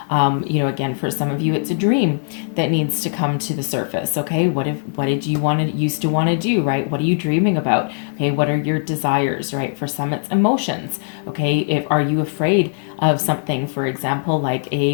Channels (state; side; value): silent; right; digital silence